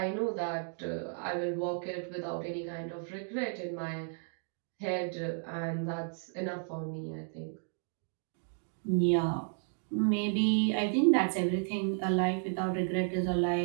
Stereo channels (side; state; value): left; silent; 56 dB below the other